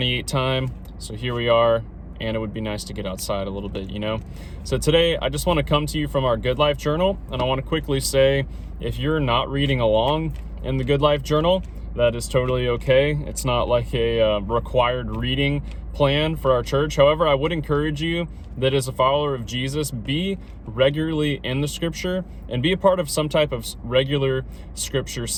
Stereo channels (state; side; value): identical; both; correlation 1.00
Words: time, so here we are, and it would be nice to get outside a little bit, you know? So today, I just want to come to you from our Good Life Journal, and I want to quickly say, if you're not reading along in the Good Life Journal, that is totally okay. It's not like a required reading plan for our church. However, I would encourage you that as a follower of Jesus, be regularly in the scripture and be a part of some type of regular scripture